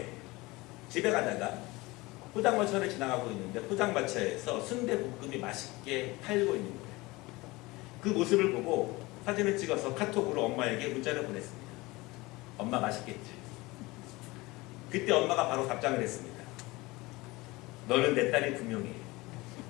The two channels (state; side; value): quieter; right; 21.9 dB